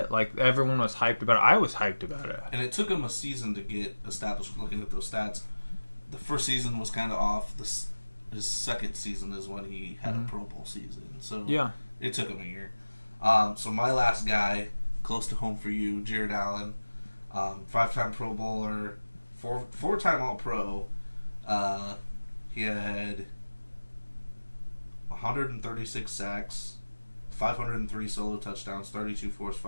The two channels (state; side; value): inverted; both; correlation -1.00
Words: Like, everyone was hyped about it. I was hyped about it. And it took him a season to get established. Looking at those stats, the first season was kind of off. His second season is when he had a Pro Bowl season. So yeah, it took him a year. So my last guy, close to home for you, Jared Allen, 5-time Pro Bowler, four-time All-Pro. He had 136 sacks, 503 solo touchdowns, 32 forced